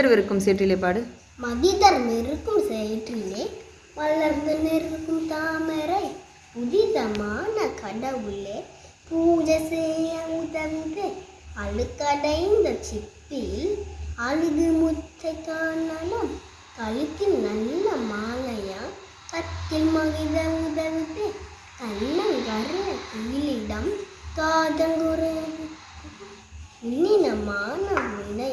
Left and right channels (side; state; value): both; identical; correlation 1.00